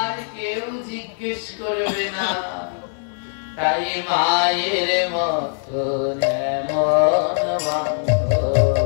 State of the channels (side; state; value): right; silent; 59 dB below the other